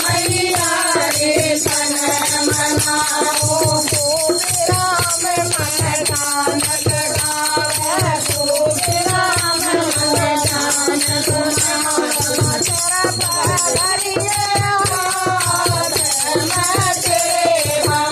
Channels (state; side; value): identical; both; correlation 1.00